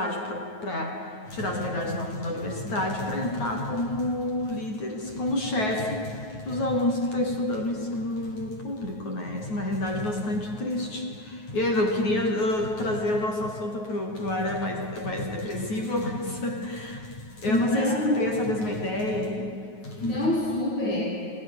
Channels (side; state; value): right; late; 9.4 ms